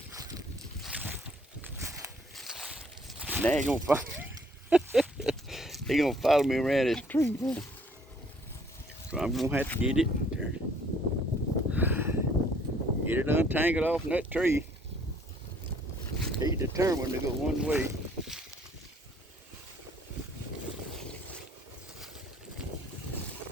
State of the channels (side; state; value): both; normal; correlation 0.61